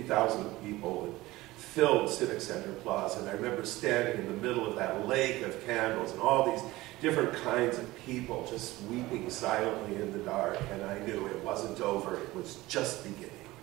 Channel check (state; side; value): quieter; left; 18.7 dB